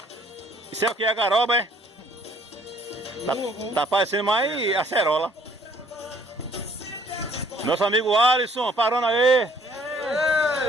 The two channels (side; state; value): both; normal; correlation 0.61